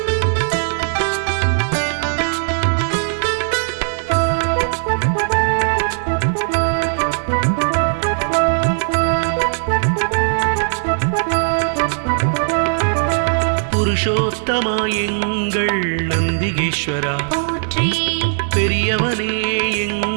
புருஷோத்தமா எங்கள் நந்திகேஸ்வரா, போற்றி பெரியவனே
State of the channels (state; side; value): silent; left; digital silence